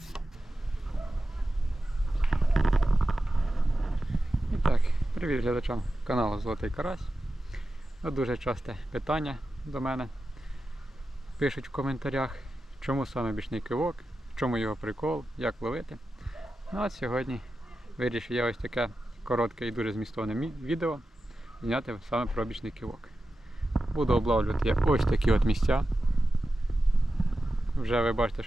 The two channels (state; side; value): normal; both; correlation 0.92